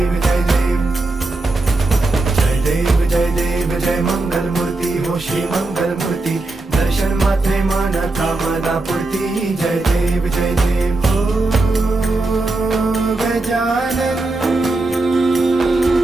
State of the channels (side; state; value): left; quieter; 3.1 dB